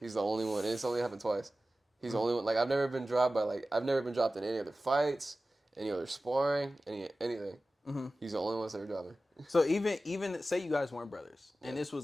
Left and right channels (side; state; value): both; normal; correlation 0.95